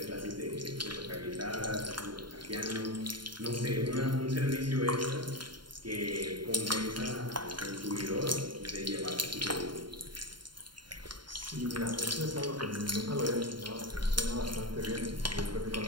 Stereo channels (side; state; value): left; late; 0.72 ms